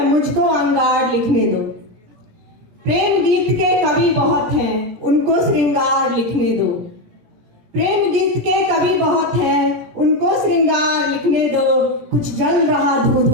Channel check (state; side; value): late; left; 17 ms